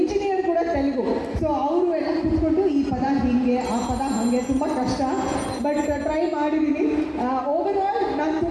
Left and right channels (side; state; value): both; identical; correlation 1.00